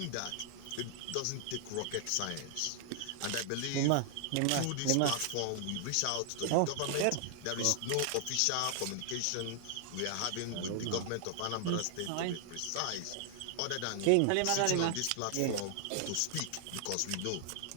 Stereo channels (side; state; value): both; different; correlation 0.00